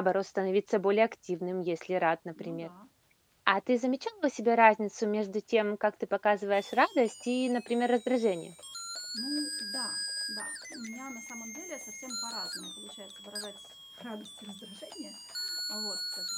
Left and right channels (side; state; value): both; identical; correlation 1.00